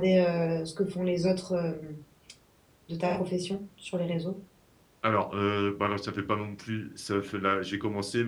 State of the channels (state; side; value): identical; both; correlation 1.00